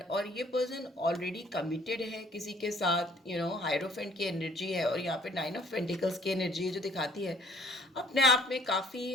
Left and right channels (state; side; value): normal; both; correlation 0.59